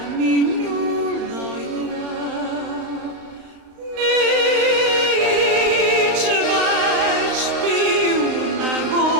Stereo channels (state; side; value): late; left; 35 ms